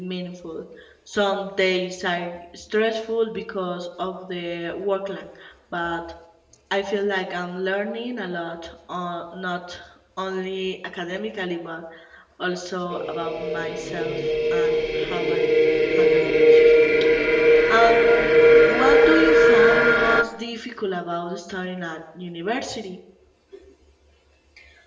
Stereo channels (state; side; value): identical; both; correlation 1.00